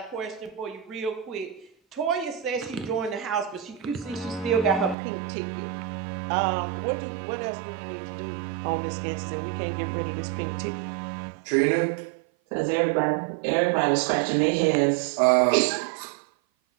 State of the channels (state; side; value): drops out; left; at 5.0 s